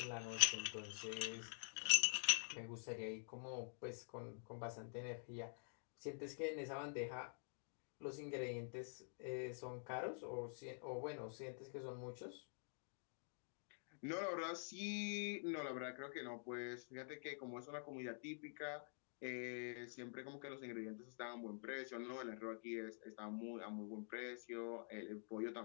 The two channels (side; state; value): right; silent; digital silence